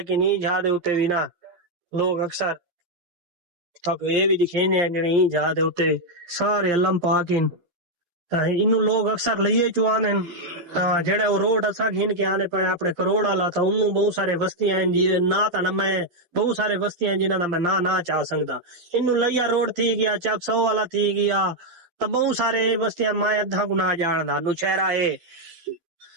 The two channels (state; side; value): late; left; 12 ms